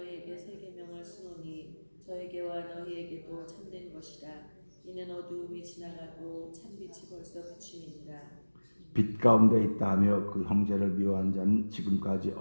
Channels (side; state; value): both; inverted; correlation -1.00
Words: 새 계명을 쓰노니 저에게와 너희에게도 참된 것이라. 이는 어두움이 지나가고 참빛이 벌써 비침이니라. 빛 가운데 있다 하며 그 형제를 미워하는 자는 지금까지